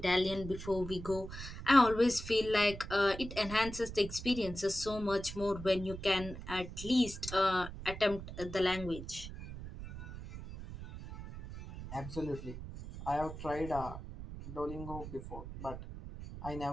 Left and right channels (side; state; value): right; noise; rumble, 10 dB below the sound